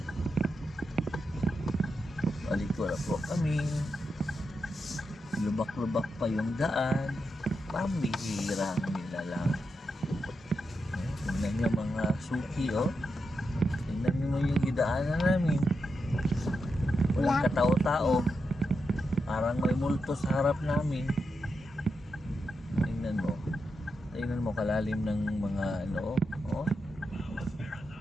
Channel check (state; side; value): normal; both; correlation 0.86